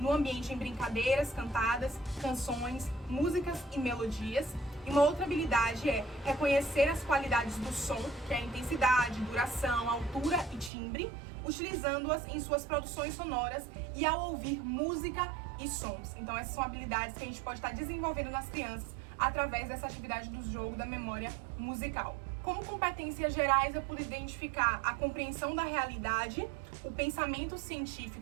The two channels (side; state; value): left; drops out; at 10.7 s